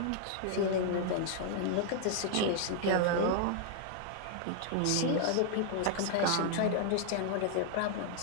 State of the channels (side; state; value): both; different; correlation 0.00